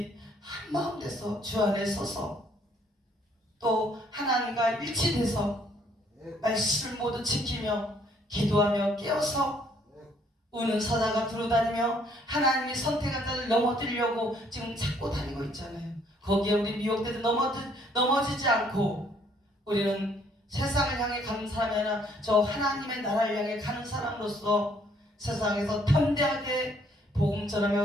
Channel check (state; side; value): normal; both; correlation 0.64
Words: 한마음 돼서 주 안에 서서 또 하나님과 일치돼서 말씀을 모두 지키며 기도하며 깨어서 우는 사자가 두루다니며 하나님이 선택한 자를 넘어뜨리려고 지금 찾고 다니고 있잖아요. 거기에 우리 미혹되도 넘어지지 않고 우리는 세상을 향해 가는 사람이 아니라 저 하나님의 나라를 향해 가는 사람으로서 세상에서 담대하게 복음